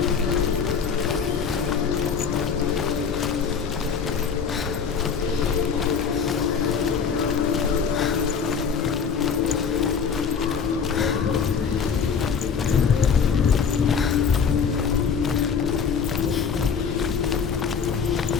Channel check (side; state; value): right; quieter; 6.3 dB